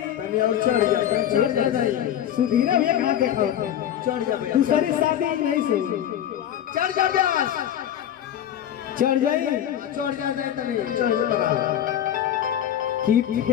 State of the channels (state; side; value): quieter; right; 10.7 dB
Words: तनी और चढ़ जा, चढ़ जा, सुधीर भैया कहाँ देखा होता चढ़ जा भैया, दूसरी शादी नहीं से चढ़ जा व्यास, चढ़ जाई चढ़ जा दे तनी, चढ़ जा लगा कि